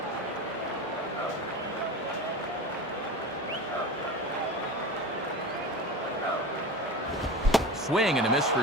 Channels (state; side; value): normal; both; correlation 0.29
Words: Swing and a miss